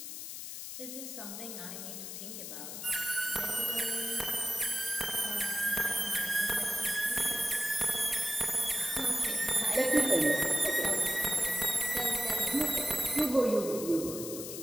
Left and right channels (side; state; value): left; noise; hiss, 8 dB below the sound